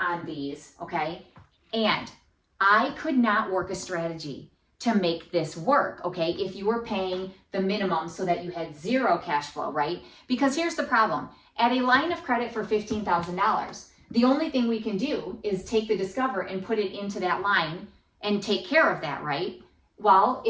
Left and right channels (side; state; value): both; identical; correlation 1.00